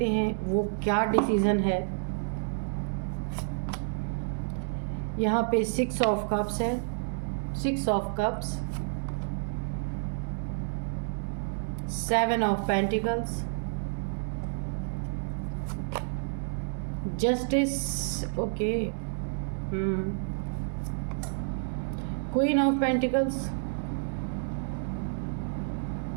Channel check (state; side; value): silent; left; digital silence